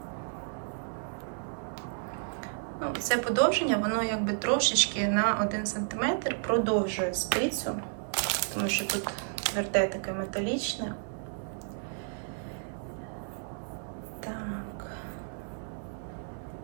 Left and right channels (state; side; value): silent; left; 57 dB below the other